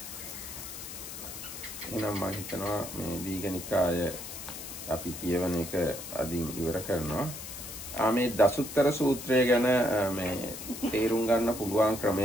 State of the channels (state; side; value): noise; left; hiss, 10 dB below the sound